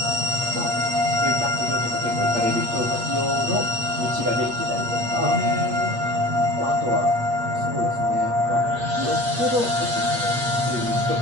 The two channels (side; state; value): left; late; 8.4 ms